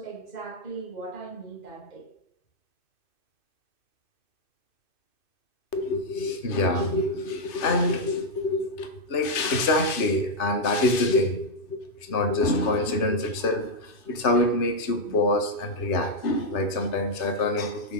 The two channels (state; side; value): late; right; 2.6 ms